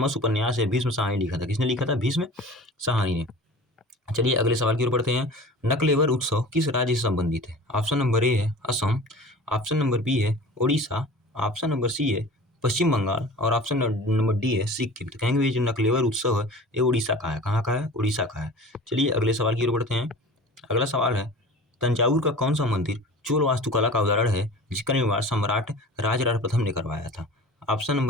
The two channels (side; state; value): both; normal; correlation 0.40